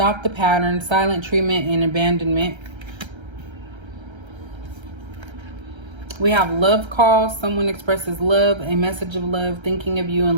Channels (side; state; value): left; late; 1.3 ms